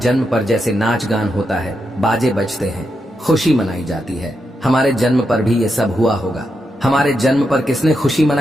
पर जैसे नाच गान होता है, बाजे बजते हैं, खुशी मनाई जाती है, हमारे जन्म पर भी ये सब हुआ होगा। हमारे जन्म पर किसने खुशी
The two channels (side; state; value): both; normal; correlation 0.84